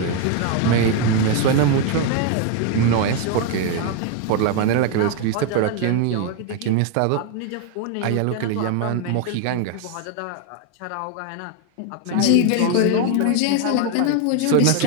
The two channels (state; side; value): different; both; correlation 0.01